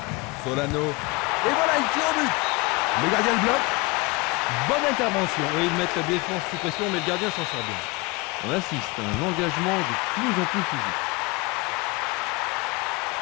Solano. Et voilà, il tire au but. Le gardien le bloque. Bonne intervention. Oui, ils mettent la défense sous pression, mais le gardien s'en sort bien. On assiste à un engagement de plus en plus physique.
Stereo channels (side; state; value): right; quieter; 25.0 dB